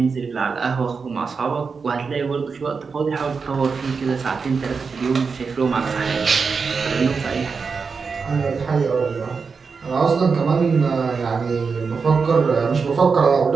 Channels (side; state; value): left; quieter; 5.2 dB